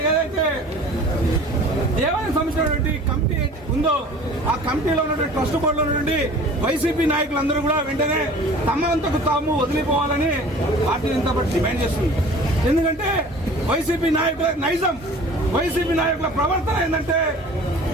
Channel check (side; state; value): both; normal; correlation 0.45